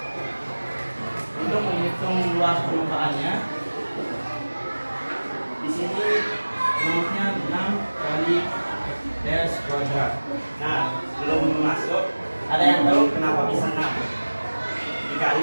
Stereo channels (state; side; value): inverted; both; correlation -1.00